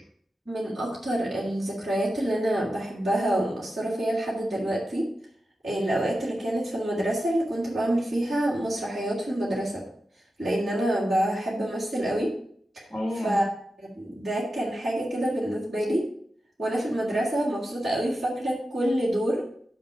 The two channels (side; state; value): both; normal; correlation 0.91